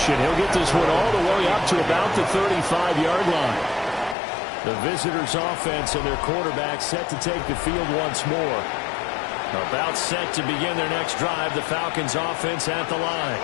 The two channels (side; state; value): right; drops out; at 4.2 s